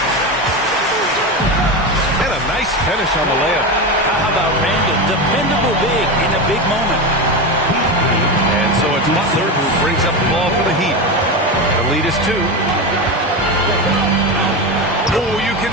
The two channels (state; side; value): normal; both; correlation 0.19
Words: And a nice finish on the layup. How about Randle? Dependable big in a big moment. And so it's Butler who brings up the ball for the Heat. The lead is 2. Oh, you can